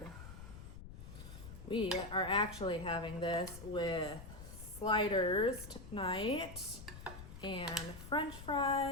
We are actually having this with sliders tonight and French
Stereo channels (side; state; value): left; noise; rumble, 13 dB below the sound